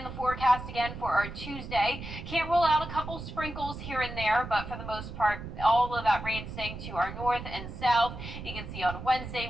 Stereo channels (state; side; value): noise; right; rumble, 9 dB below the sound